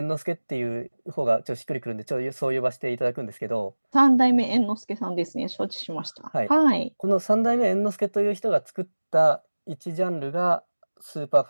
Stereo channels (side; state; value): both; inverted; correlation -1.00